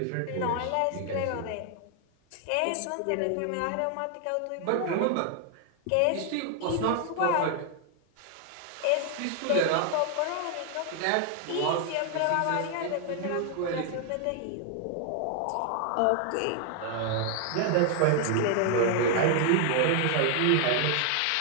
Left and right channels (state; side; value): different; both; correlation 0.00